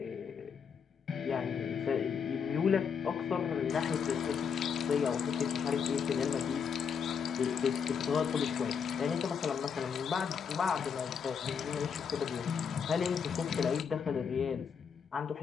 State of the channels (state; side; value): quieter; right; 6.7 dB